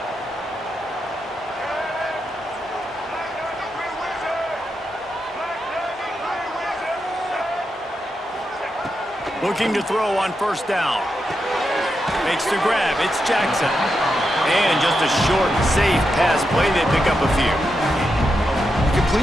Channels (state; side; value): normal; both; correlation 0.86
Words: Looking to throw on 1st down. Makes the grab. It's Jackson. And just a short, safe pass play. They pick up a few. You